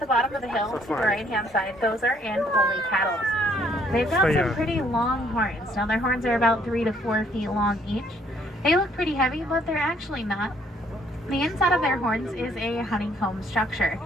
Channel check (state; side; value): normal; both; correlation 0.65